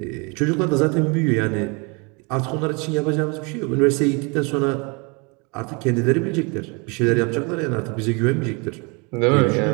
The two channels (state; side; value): quieter; left; 31.0 dB